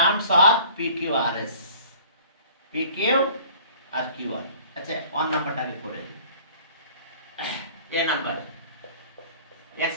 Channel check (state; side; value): inverted; both; correlation -0.50